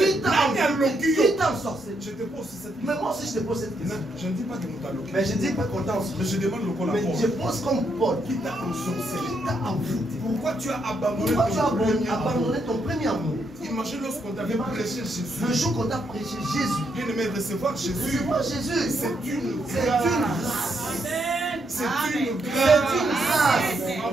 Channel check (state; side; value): normal; both; correlation 0.78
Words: t'a ensorcelé? Je te pose cette question. Mais moi aussi je te pose cette question. Je ne dis pas que nous t'allons. Mais je ne dis pas qu'on t'a ensorcelé. Mais je demande le col à Mais je pose comme Paul. Qui t'a ensorcelé? Qui t'a envoûté? Pourquoi tu as abandonné ton premier amour? Imagine lorsqu'on t'avait prêché Jésus. Le jour qu'on t'a prêché Jésus. Bien aimé, recevoir Jésus. C'est une grâce. C'est une grâce.